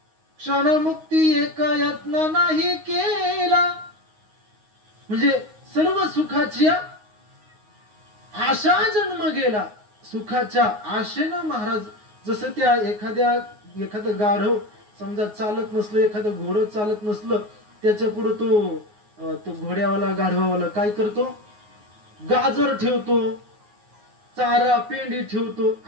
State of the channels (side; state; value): left; late; 9.5 ms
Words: क्षणमुक्ती एक यत्न नाही केला. म्हणजे सर्व सुखाची आशा जन्म गेला. सुखाच्या आशेनं महाराज, जसं त्या एखादं गाढव समजा चालत नसलं, एखादं घोडं चालत नसलं, त्याच्या पुढे तो घोड्यावाला गाढवावाला काय करतो? गाजर ठेवतो, चारा पेंडी ठेवतो.